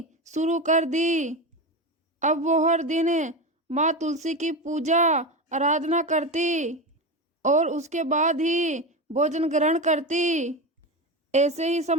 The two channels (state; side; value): normal; both; correlation 0.19